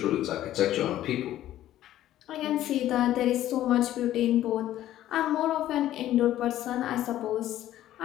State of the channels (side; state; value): right; quieter; 13.2 dB